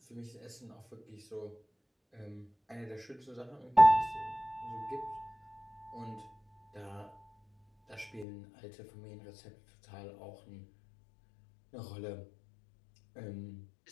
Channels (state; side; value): drops out; right; at 8.2 s